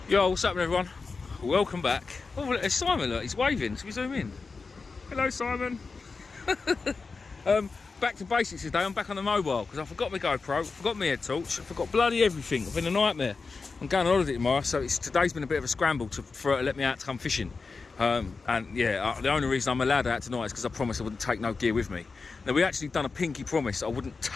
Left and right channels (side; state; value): right; quieter; 4.4 dB